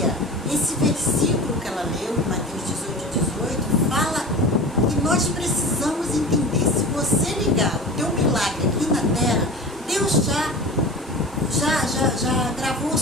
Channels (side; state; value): both; normal; correlation 0.34